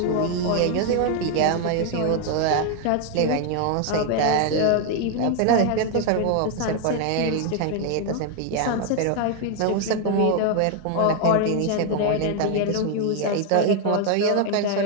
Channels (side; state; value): both; different; correlation 0.00